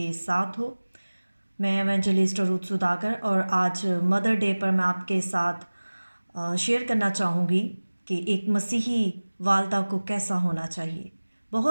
साथ हो। मैं एवेंजलिस्ट रूथ सुदागर और आज मदर डे पर मैं आपके साथ शेयर करना चाहूँगी कि एक मसीही वालदा को कैसा होना चाहिए।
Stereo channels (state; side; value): inverted; both; correlation -1.00